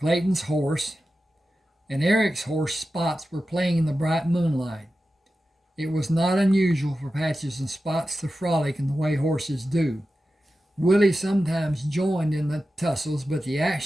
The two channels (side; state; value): both; normal; correlation 0.93